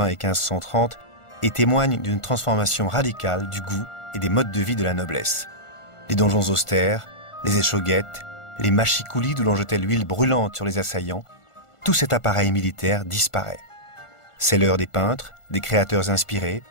et 1530 et témoignent d'une transformation radicale du goût et des modes de vie de la noblesse. Les donjons austères, les échauguettes, les machicoulis d'où l'on jetait l'huile brûlante sur les assaillants, tout cet appareil militaire disparaît. C'est l'heure des peintres, des créateurs inspirés,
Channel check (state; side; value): late; right; 1.4 ms